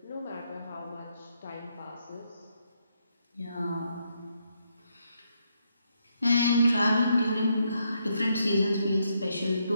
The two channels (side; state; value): both; inverted; correlation -0.77